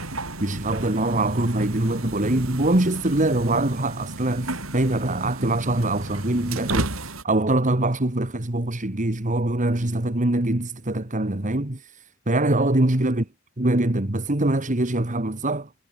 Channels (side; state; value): both; normal; correlation 0.57